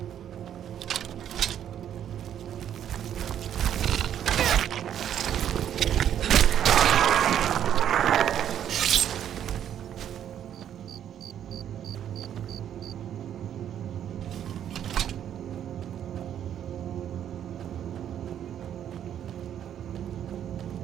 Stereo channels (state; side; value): quieter; left; 9.9 dB